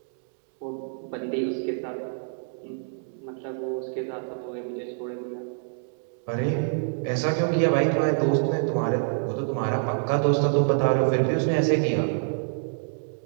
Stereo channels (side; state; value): left; silent; digital silence